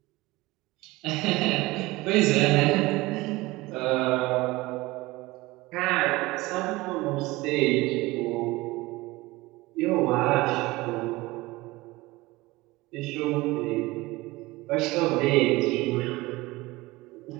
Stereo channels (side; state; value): left; quieter; 20.6 dB